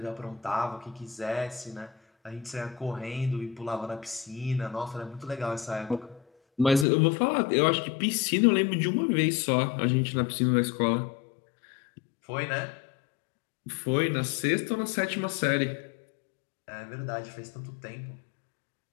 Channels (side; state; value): right; drops out; at 6.9 s